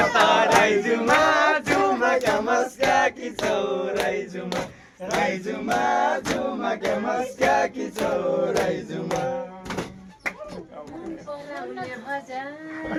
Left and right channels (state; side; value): identical; both; correlation 1.00